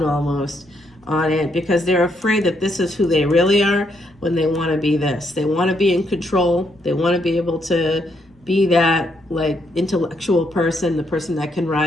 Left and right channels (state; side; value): normal; both; correlation 0.75